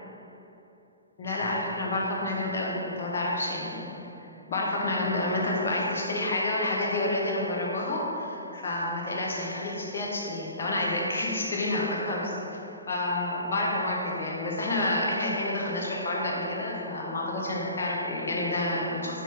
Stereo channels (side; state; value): both; inverted; correlation -0.46